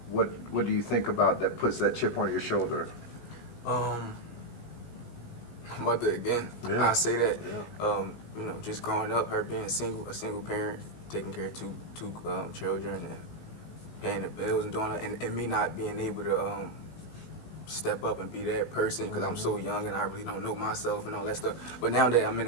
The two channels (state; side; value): late; right; 17 ms